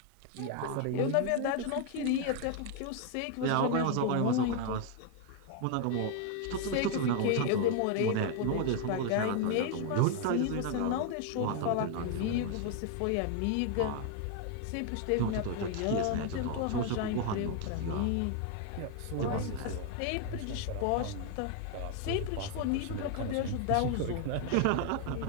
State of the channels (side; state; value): both; different; correlation 0.00